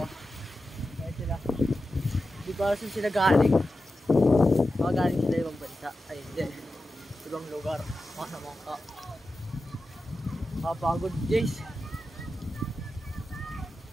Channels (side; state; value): both; normal; correlation 0.92